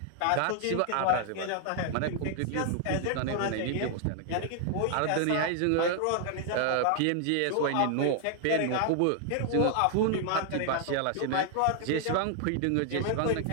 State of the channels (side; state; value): both; different; correlation 0.00